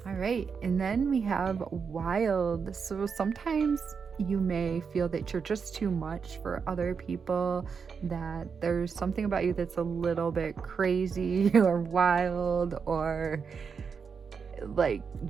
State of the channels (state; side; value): quieter; left; 6.0 dB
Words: All right, and then we have wild. So sometimes you may feel that you're just too much for other people, that there's something about you that's a little bit crazy or wild, or like